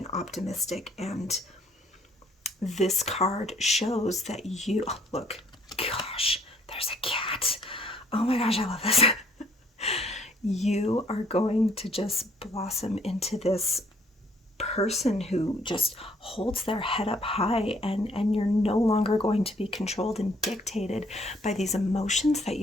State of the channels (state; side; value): normal; both; correlation 0.63